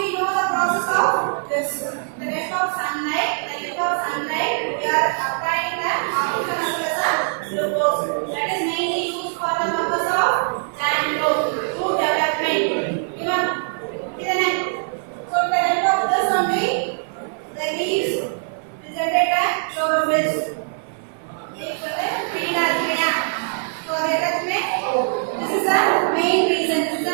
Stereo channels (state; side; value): silent; left; 55 dB below the other